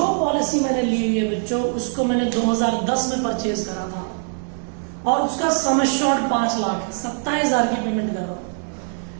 पॉलिसी मैंने ली हुई है बच्चों, उसको मैंने 2010 में परचेज करा था, और उसका सम एश्योर्ड 5 लाख है। 27,000 की पेमेंट कर रहा हूं।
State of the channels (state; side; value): silent; left; 55 dB below the other